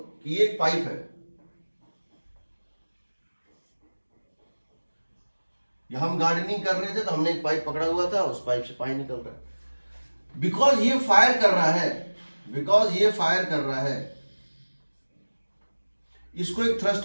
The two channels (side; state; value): both; inverted; correlation -1.00